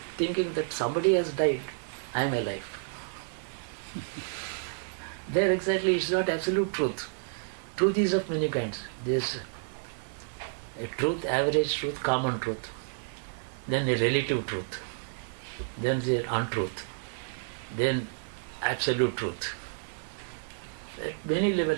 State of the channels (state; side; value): silent; left; digital silence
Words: thinking that somebody has died, I am alive. There exactly, it's not absolute truth. Truth is of many kinds. There's a truth, average truth, common truth. Then a relative truth. Then there's untruth. then absolute truth. At many